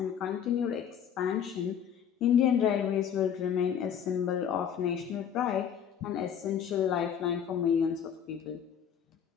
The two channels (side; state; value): right; quieter; 8.5 dB